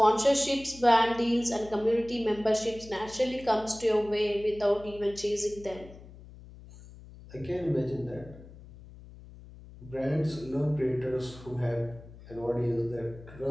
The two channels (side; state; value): left; noise; hum, 18 dB below the sound